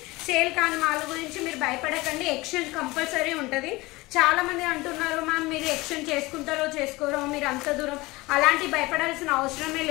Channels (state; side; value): quieter; right; 21.6 dB